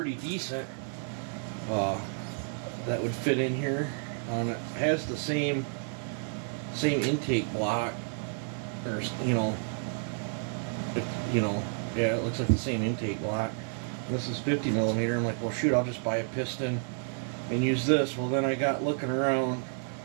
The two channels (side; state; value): left; silent; 57 dB below the other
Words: decent. That would fit in here. It has the same intake block, or yeah, it looks like the same intake block. This is 50 millimeter. I'm like, well, shoot, I'll just buy a piston and use this. Well, then I got looking around.